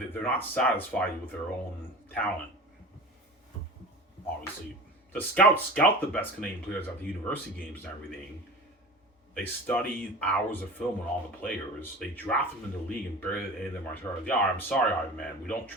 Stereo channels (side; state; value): both; normal; correlation 0.36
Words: they're not satisfied with their own talent. Obviously, the scouts scout the best Canadian players at the university games and everything. They study hours of film on all the players. They draft them in the league and barely any of them are starters. Yeah, I'm sorry, Ivan, man. We don't